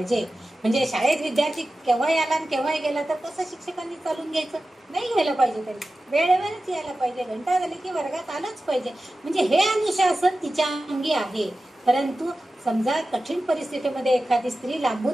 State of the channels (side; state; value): both; normal; correlation 0.94